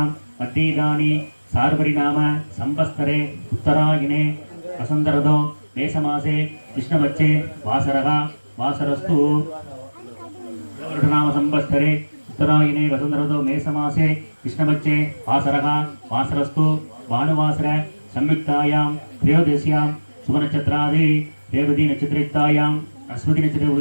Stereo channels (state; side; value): inverted; both; correlation -1.00